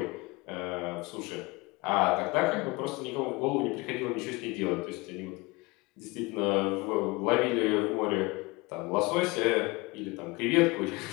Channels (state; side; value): quieter; right; 24.2 dB